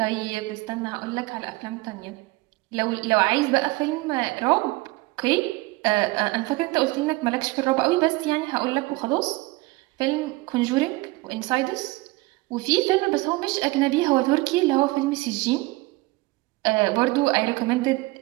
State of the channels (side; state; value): left; quieter; 22.4 dB